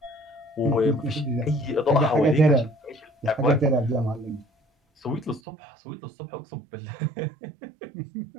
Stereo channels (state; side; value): drops out; left; at 5.4 s